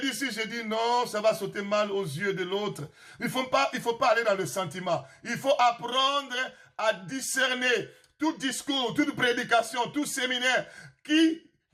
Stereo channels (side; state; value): both; identical; correlation 1.00